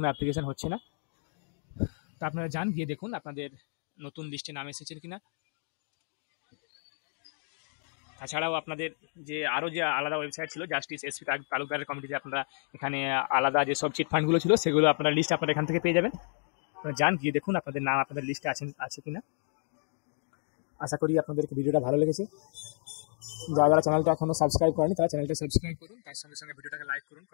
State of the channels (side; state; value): right; silent; digital silence